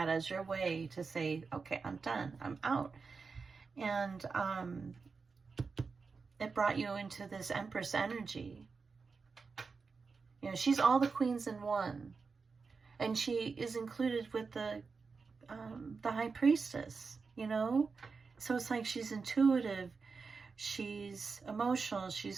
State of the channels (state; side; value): quieter; left; 4.8 dB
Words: as your way to say, okay, I'm done. I'm out. And it brought you into this Empress energy. You know, she's all the queens in one. And she is included with the High Priestess, you know? So it's like she's intuitive, she's emotional,